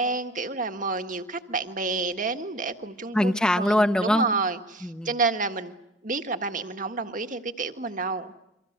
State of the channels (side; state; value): both; normal; correlation 0.41